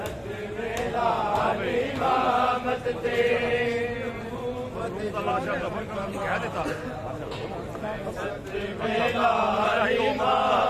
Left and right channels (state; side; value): identical; both; correlation 1.00